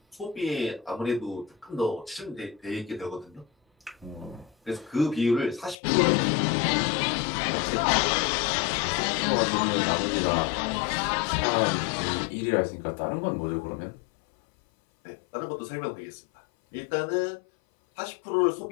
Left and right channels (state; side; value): drops out; right; at 5.8 s